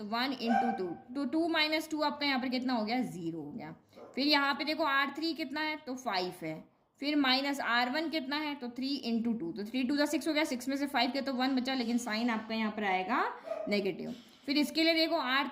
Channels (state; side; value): identical; both; correlation 1.00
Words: 1 इंटू 2, तो 2 माइनस 2 आपका यहाँ पर कितना हो गया 0 हो गया। फिर यहाँ पे देखो R3 कितना है, तो 5 है, फिर माइनस R1 कितना है, तो 3 इंटू 2, तो 3 2 6 हो गया, 6 में से 5 के तो 1 बचा, लेकिन साइन आपका यहाँ पर आएगा नेगेटिव। फिर इसके लिए देखो